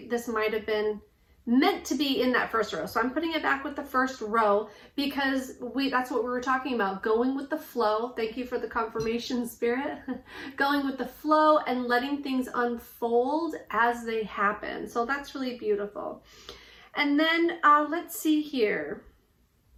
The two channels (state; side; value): identical; both; correlation 1.00